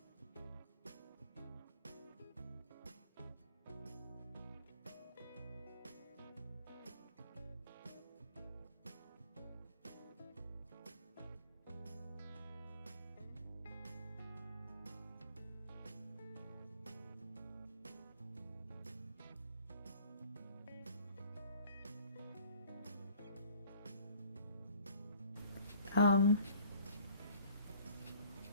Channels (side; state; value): both; inverted; correlation -0.51